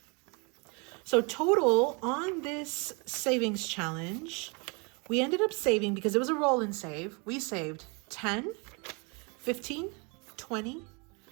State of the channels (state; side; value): quieter; left; 32.0 dB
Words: So total on this savings challenge, we ended up saving, because it was a roll and save, we saved 10, 15, 20,